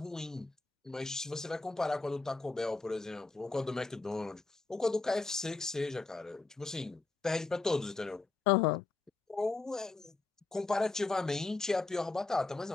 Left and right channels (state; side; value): quieter; right; 3.6 dB